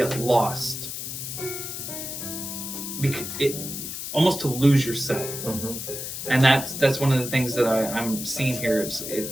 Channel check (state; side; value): noise; left; hiss, 6 dB below the sound